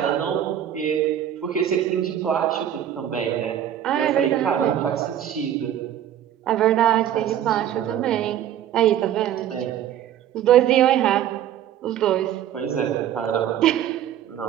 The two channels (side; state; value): left; quieter; 10.7 dB